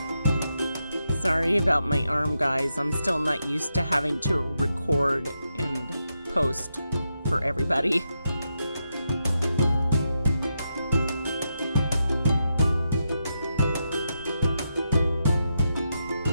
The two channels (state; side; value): inverted; both; correlation -0.85